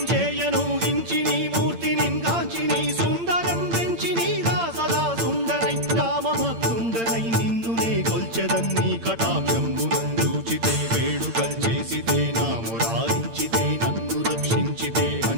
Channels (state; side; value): late; left; 8.8 ms